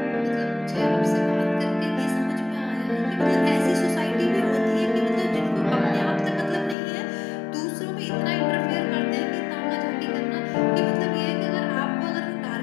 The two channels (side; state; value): right; drops out; at 6.8 s